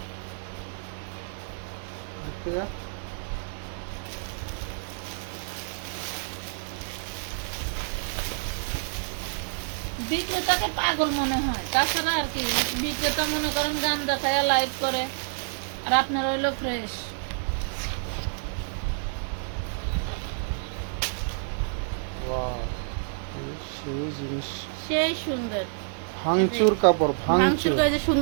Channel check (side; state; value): left; silent; digital silence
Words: ঠিক আছে। বিক্রেতাকে পাগল মনে হয়, তাছাড়া আর কি। বিক্রেতা মনে করেন গান দেখায় লাইভ করে, আর আপনার হইলো ফ্রেশ। Wow, সেই জিনিস। সেই সুন্দর ভাঙচুর কাপড়, মাংস ভাঙচুর, যে